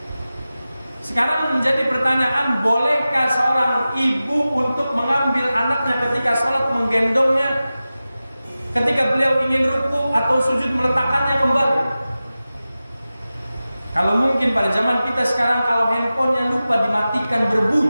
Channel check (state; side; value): inverted; both; correlation -0.95